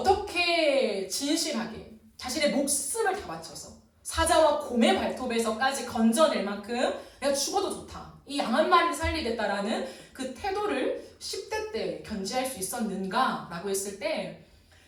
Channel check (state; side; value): identical; both; correlation 1.00